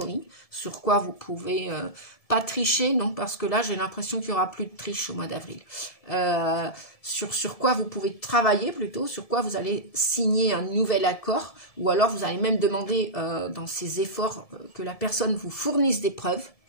sur quoi vous pouvez pas tricher, non, parce que là, j'ai l'impression qu'il n'y aura plus de triche au mois d'avril. Sur quoi vous pouvez travailler plutôt, sur quoi vous allez signer un nouvel accord, ou alors vous allez même demander dans ces efforts que la personne vous fournisse des preuves,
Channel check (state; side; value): late; right; 1.7 ms